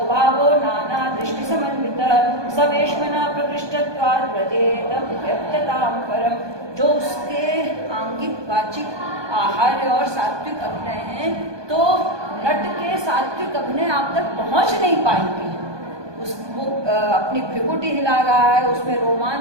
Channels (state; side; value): late; left; 1.2 ms